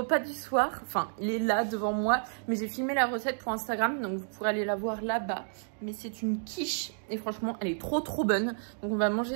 du soir. Enfin, il est là devant moi. Mais j'ai filmé la recette pour Instagram. Donc vous pourrez aller la voir là-bas. Mais c'est une quiche. Et franchement, elle est trop bonne. Donc on va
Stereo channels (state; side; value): silent; left; digital silence